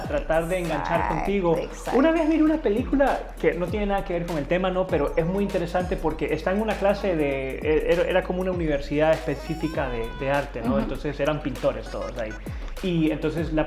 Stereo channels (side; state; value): both; identical; correlation 1.00